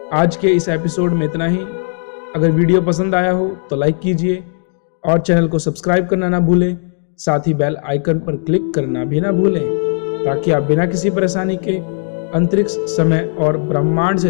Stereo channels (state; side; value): silent; right; digital silence